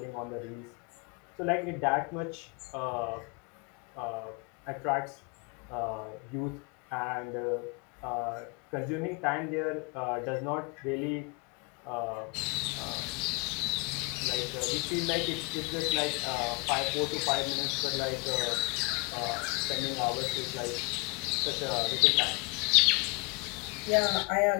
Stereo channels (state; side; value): quieter; right; 29.5 dB